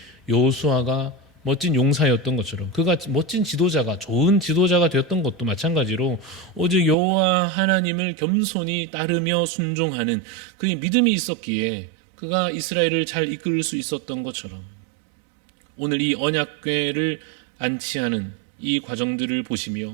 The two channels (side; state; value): left; drops out; at 7.0 s